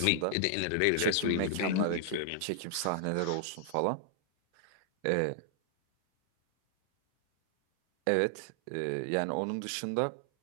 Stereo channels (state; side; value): different; both; correlation -0.01